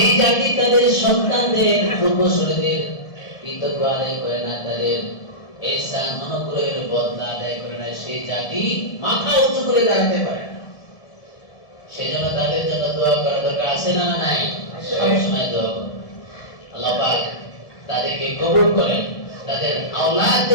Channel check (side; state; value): right; late; 1.5 ms